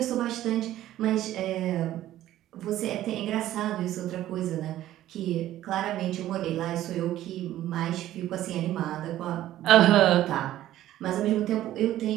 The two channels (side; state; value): left; quieter; 13.6 dB